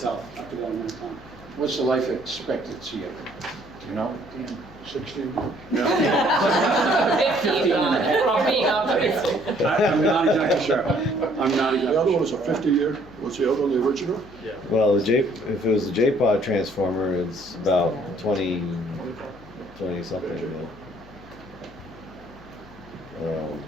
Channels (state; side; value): noise; left; hum, 22 dB below the sound